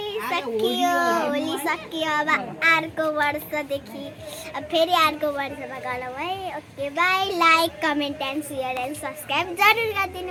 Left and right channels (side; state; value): both; identical; correlation 1.00